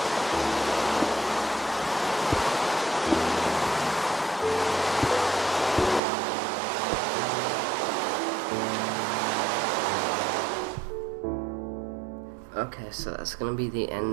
Okay, so that's gonna be the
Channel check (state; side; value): drops out; left; at 6.0 s